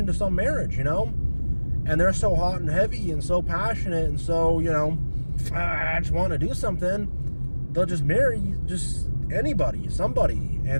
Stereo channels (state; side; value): inverted; both; correlation -1.00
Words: some marriage, you know? And they're so hot and heavy and so passionate and so, you know, I just want to do something. They'll just marry just anybody, somebody.